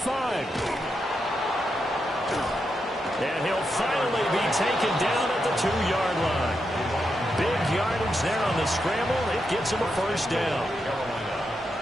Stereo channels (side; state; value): both; normal; correlation 0.84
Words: And he'll finally be taken down at the 2-yard line. Big yardage there on the scramble. It gets him a first down.